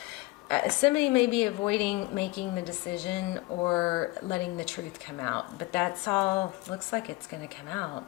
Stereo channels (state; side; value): quieter; right; 21.4 dB